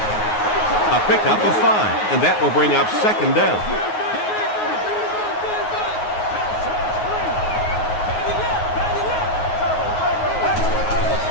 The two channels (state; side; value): late; right; 9.4 ms